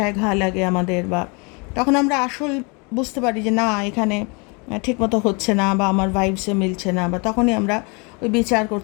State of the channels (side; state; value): right; quieter; 31.6 dB